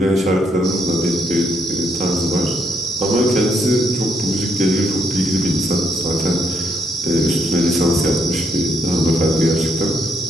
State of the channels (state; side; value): normal; both; correlation 0.74